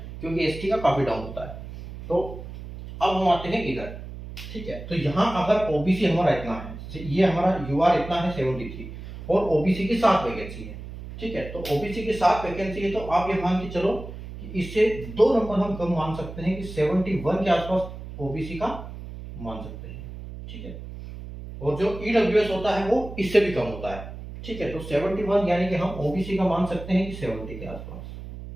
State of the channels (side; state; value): right; noise; hum, 11 dB below the sound